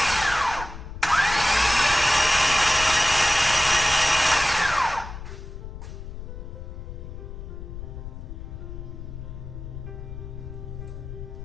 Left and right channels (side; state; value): left; noise; rumble, 10 dB below the sound